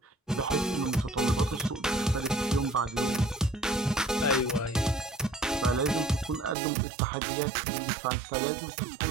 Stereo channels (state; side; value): drops out; left; at 6.6 s